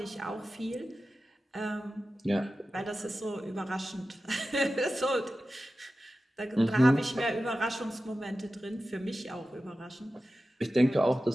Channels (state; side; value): normal; both; correlation 0.94